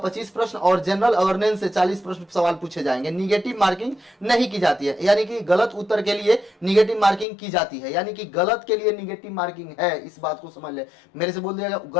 प्रश्न और जनरल अवेयरनेस से 40 प्रश्न सवाल पूछे जाएंगे। निगेटिव मार्किंग नहीं की जाती है, यानी कि गलत उत्तर के लिए निगेटिव मार्किंग की जाती है, यानी कि गलत के लिए निगेटिव मार्किंग है, इस बात को समझ ले। मेरे से बोल दिया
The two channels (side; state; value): right; drops out; at 7.2 s